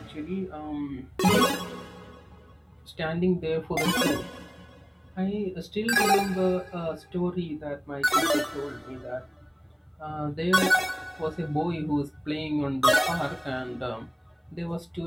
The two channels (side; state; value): both; identical; correlation 1.00